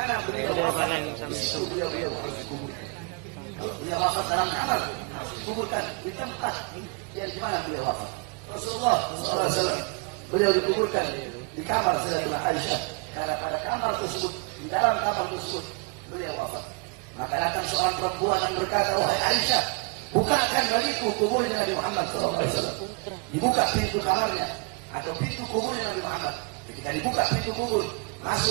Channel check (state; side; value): quieter; left; 31.9 dB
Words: beliau wafat, di situ beliau harus dikuburkan. Kalau beliau wafat dalam kamar, harus dikuburkan di tempat yang di mana beliau wafat. Rasulullah SAW, beliau dikuburkan di kamar Sayyidatina Aisyah. Karena pada kamar tersebut, di dalam kamar tersebut, beliau wafat. Maka datang seorang perempuan yang berkata, wahai Aisyah, bukakan bagiku kuburnya Nabi Muhammad SAW. Dibuka pintu kamarnya atau pintu kuburnya Nabi Muhammad. Ketika dibuka pintu kubur,